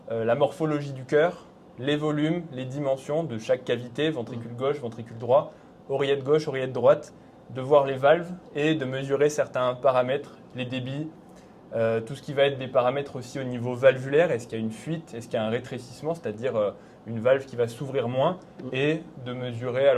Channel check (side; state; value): both; identical; correlation 1.00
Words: la morphologie du cœur, les volumes, les dimensions de chaque cavité, ventricule gauche, ventricule droit, oreillette gauche, oreillette droite, de voir les valves et de mesurer certains paramètres, les débits, tout ce qui va être des paramètres aussi au niveau valvulaire. Est-ce qu'il y a une fuite, est-ce qu'il y a un rétrécissement, c'est-à-dire une valve qui va s'ouvrir moins, et de mesurer